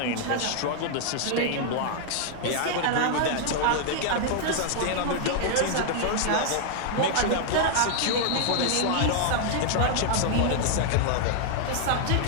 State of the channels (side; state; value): both; different; correlation 0.00